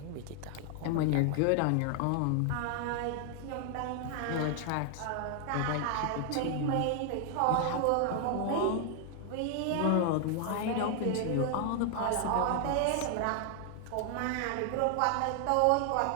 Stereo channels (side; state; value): both; different; correlation 0.00